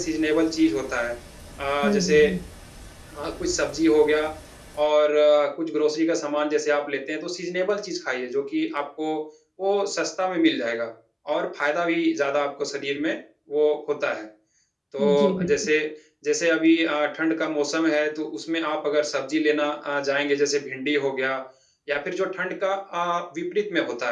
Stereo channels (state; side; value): identical; both; correlation 1.00